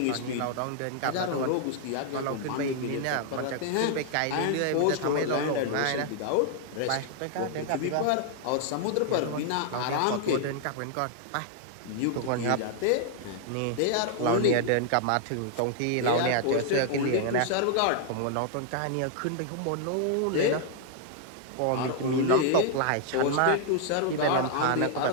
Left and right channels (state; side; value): different; both; correlation 0.00